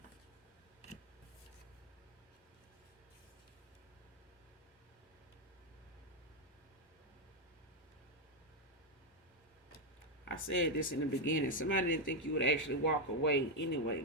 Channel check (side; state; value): both; normal; correlation 0.03